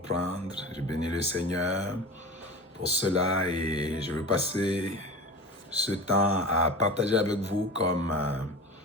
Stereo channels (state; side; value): normal; both; correlation 0.30